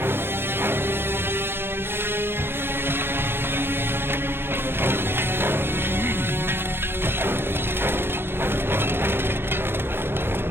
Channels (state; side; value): late; left; 0.11 ms